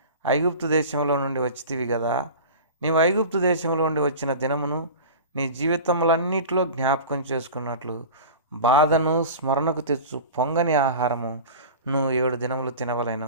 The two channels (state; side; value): inverted; both; correlation -0.34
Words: ఐగుప్తు దేశంలో నుండి వచ్చితివి కదా. నీవు ఐగుప్తు దేశంలో నుండి వచ్చిన దినమును నీ జీవితములన్నిటిలో జ్ఞాపకం చేసుకున్నట్లు బాధను స్మరణకు తెచ్చు పొంగని ఆహారము నువ్వు 7 దినములు